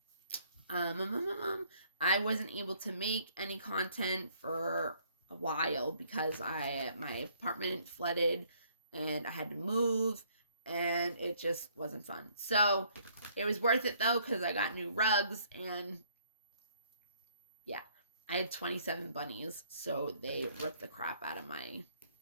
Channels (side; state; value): both; inverted; correlation -0.64